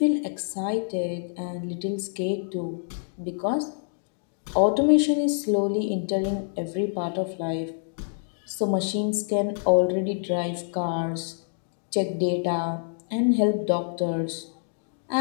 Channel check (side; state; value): right; silent; digital silence